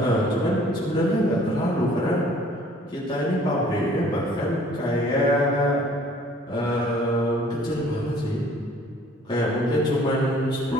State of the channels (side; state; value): both; normal; correlation 0.55